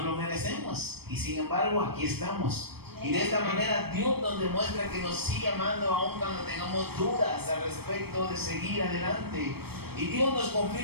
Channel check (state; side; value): late; left; 0.96 ms